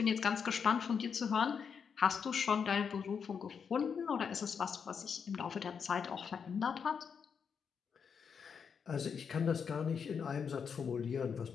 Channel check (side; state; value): right; quieter; 6.6 dB